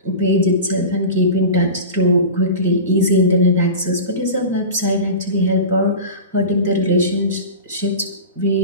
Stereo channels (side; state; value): both; inverted; correlation -0.30